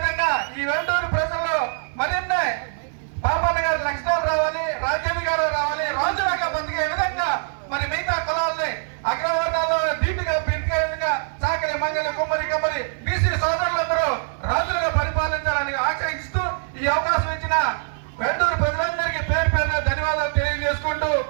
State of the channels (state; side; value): silent; left; digital silence